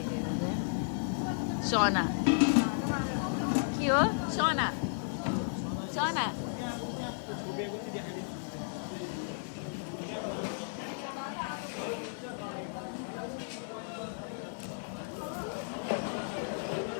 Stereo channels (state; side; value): silent; right; digital silence